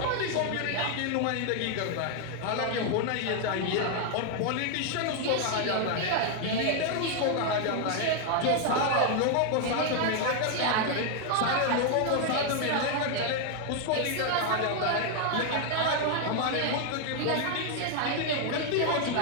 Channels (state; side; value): different; both; correlation 0.00